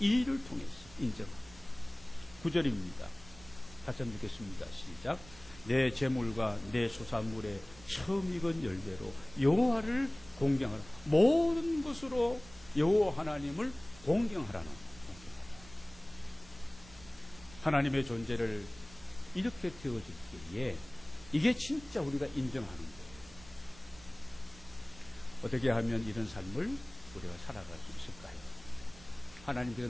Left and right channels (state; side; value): noise; right; rumble, 20 dB below the sound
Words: 일을 통해서 인정하고. 9절입니다. 같이 한번 읽겠습니다. 시작. 내 재물과 내 소산물의 처음 익은 열매로 여호와를 공경하라. 모든 것으로 여호와 하나님을 공경하라는 공경하라. 하나님의 존재를 이렇게 되어질 때에 이게 진짜 우리가 인정하는 거예요. 어떻게 하면 이런 삶을 우리가 살아갈 수 있을까요? 하나님께서